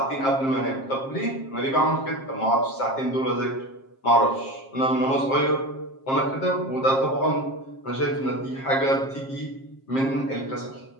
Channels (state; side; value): late; right; 7.5 ms